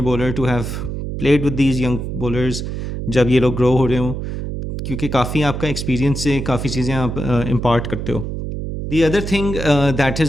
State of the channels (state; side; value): noise; right; hum, 5 dB below the sound